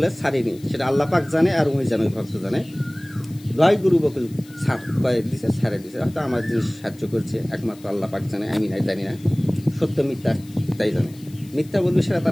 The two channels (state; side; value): noise; left; hiss, 24 dB below the sound